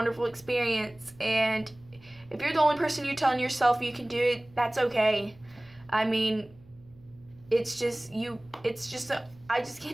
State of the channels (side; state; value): right; noise; hum, 27 dB below the sound